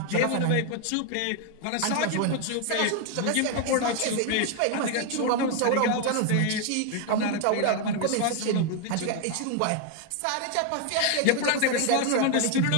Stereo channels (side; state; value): both; different; correlation 0.00